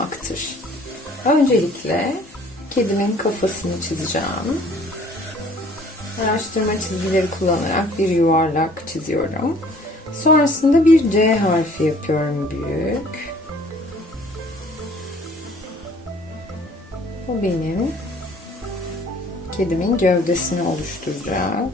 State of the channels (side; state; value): both; normal; correlation 0.54